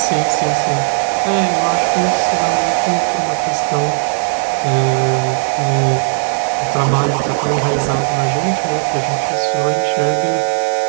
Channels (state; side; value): silent; left; digital silence